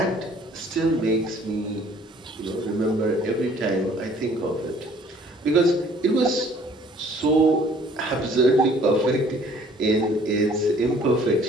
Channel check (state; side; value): normal; both; correlation 0.56